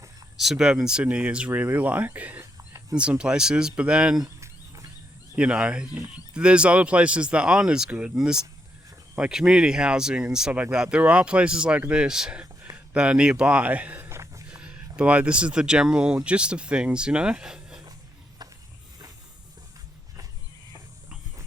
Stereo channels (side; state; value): both; normal; correlation 0.79